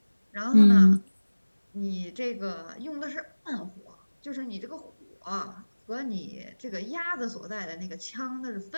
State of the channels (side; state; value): both; inverted; correlation -1.00